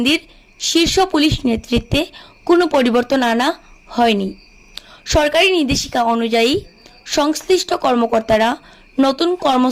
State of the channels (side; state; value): both; identical; correlation 1.00